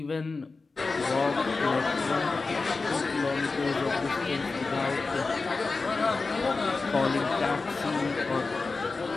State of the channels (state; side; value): quieter; right; 3.9 dB